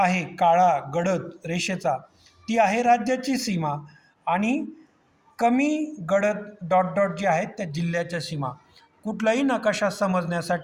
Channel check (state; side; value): identical; both; correlation 1.00